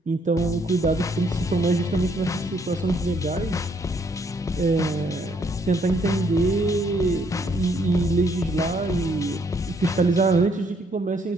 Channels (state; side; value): normal; both; correlation 0.69